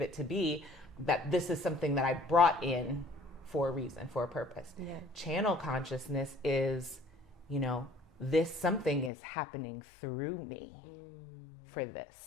it to be, that this is something that I brought in for a reason, for a purpose. Yeah. Channel consciousness is, you know, this something is happening through me for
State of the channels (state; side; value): drops out; right; at 9.1 s